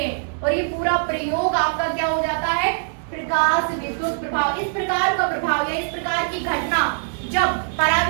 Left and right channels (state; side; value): silent; left; 62 dB below the other